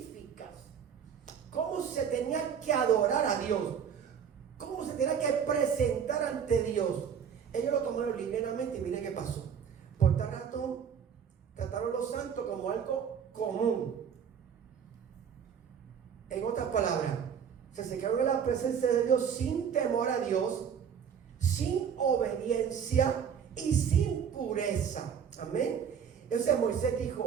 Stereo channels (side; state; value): left; quieter; 7.6 dB